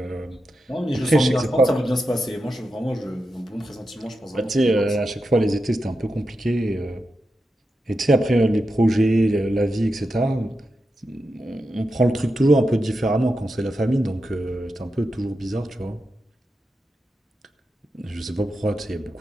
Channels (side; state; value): both; normal; correlation 0.89